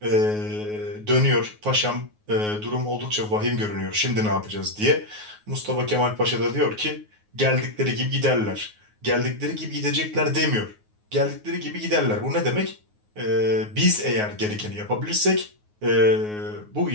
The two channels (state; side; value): late; left; 9.5 ms